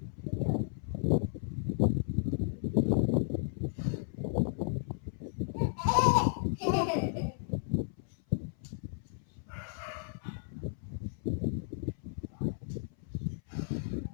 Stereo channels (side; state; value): right; silent; 55 dB below the other